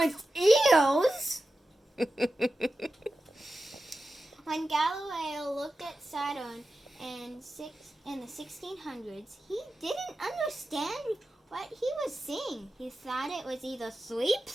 eels? When Galileo looked at Saturn in the 1600s, he didn't understand what he was seeing. He thought it was either 3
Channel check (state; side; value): normal; both; correlation 0.93